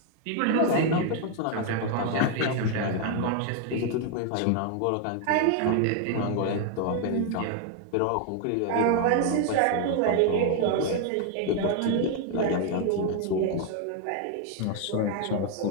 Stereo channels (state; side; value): different; both; correlation 0.00